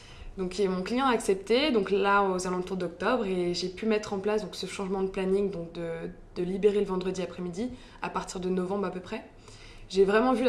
Donc mon client a accepté, donc là aux alentours d'octobre, et j'ai pu mettre en place donc, ce changement de planning, donc de libérer le vendredi après-midi à partir de novembre à peu près. J'ai vraiment vu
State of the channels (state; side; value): identical; both; correlation 1.00